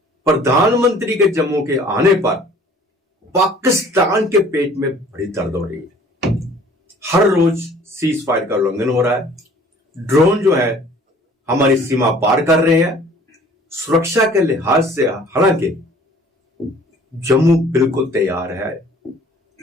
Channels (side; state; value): both; normal; correlation 0.52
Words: प्रधानमंत्री के जम्मू के आने पर पाकिस्तान के पेट में बड़ी दर्द हो रही है। हर रोज सीज फायर का उल्लंघन हो रहा है, ड्रोन जो है हमारी सीमा पार कर रहे हैं। सुरक्षा के लिहाज से हालांकि जम्मू बिल्कुल तैयार है।